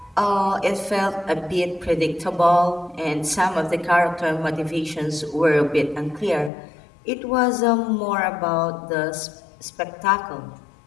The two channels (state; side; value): drops out; right; at 6.5 s